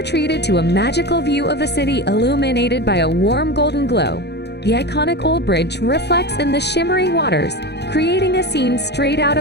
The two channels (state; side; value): late; right; 0.49 ms